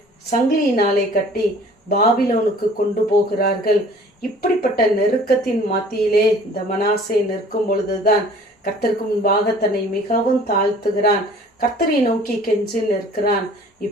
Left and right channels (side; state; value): both; normal; correlation 0.50